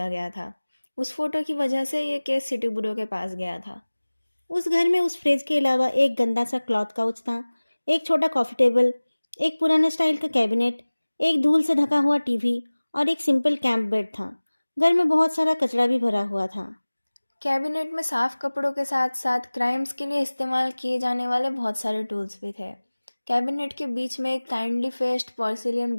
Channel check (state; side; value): inverted; both; correlation -1.00